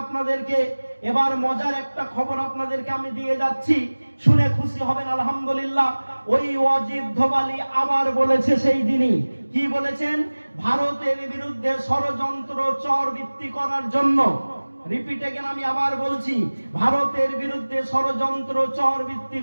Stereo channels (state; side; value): inverted; both; correlation -1.00